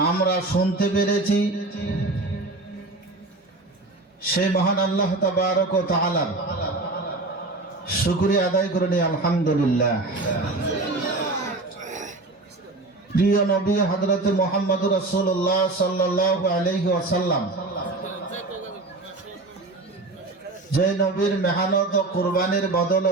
আমরা শুনতে পেরেছি সেই মহান আল্লাহ তাবারক ওয়া তাআলার শুকরিয়া আদায় করে নিই আলহামদুলিল্লাহ। প্রিয় নবী হযরত মুহাম্মদুর রাসূলুল্লাহ সাল্লাল্লাহু আলাইহি ওয়াসাল্লাম যে নবীর মেহনত ও কুরবানির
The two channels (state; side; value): quieter; left; 3.1 dB